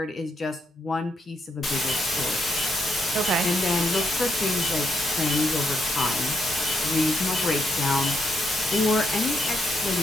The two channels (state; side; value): normal; both; correlation 0.78